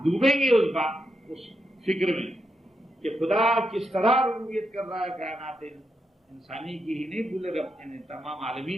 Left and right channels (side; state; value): both; normal; correlation 0.84